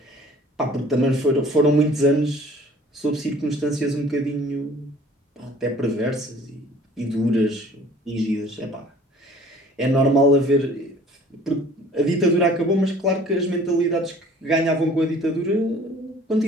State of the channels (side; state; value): both; normal; correlation 0.51